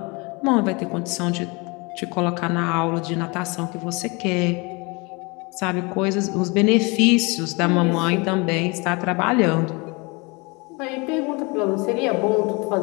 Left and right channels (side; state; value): right; quieter; 27.8 dB